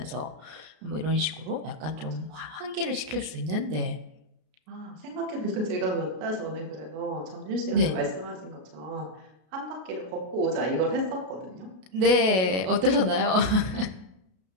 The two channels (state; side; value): late; left; 33 ms